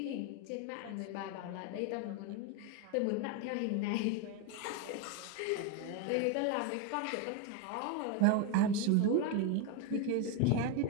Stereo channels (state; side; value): different; both; correlation 0.02